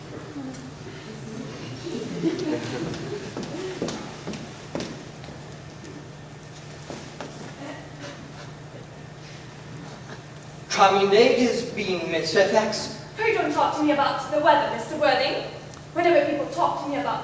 Charming day it has been, Miss Fairfax. Pray don't talk to me about the weather, Mr. Worthing. Whenever people talk to me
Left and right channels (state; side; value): identical; both; correlation 1.00